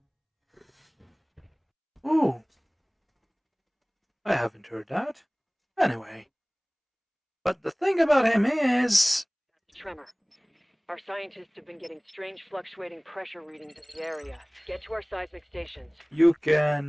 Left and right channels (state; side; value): identical; both; correlation 1.00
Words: ooh, I haven't heard that. Anyway, but the thing about him is, Tremor. Our scientists have been getting strange fluctuating pressure readings in the area. Get to our seismic stations. you